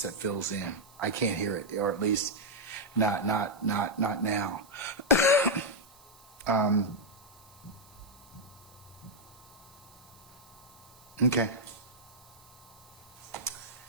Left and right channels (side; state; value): right; noise; hiss, 25 dB below the sound